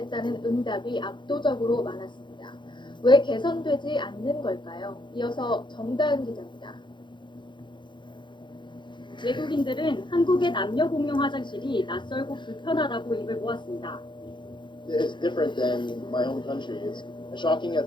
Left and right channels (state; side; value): late; right; 0.23 ms